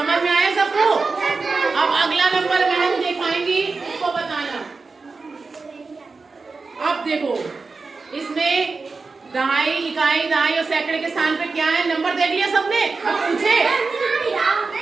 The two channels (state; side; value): quieter; left; 4.2 dB